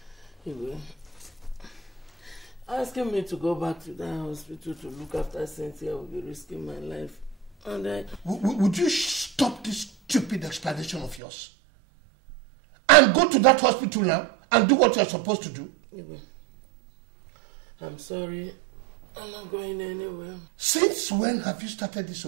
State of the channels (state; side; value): drops out; left; at 11.2 s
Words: You will. Asking me to go back to that hospital to look after Cynthia will be risking my life. And Would you stop this stupid explanation of yours? and go to that hospital now and do what you're supposed to do? I'm sorry. I'm not going anywhere. Since when have you started